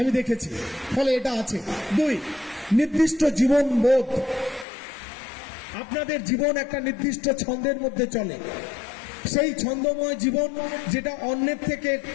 দেখেছি, ফলে এটা আছে। 2, নির্দিষ্ট জীবন বোধ। আপনাদের জীবন একটা নির্দিষ্ট ছন্দের মধ্যে চলে। সেই ছন্দময় জীবন যেটা অন্যের থেকে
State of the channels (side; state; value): right; drops out; at 4.7 s